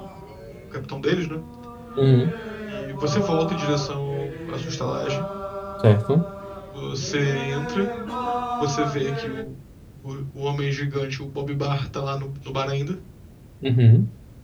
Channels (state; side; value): identical; both; correlation 1.00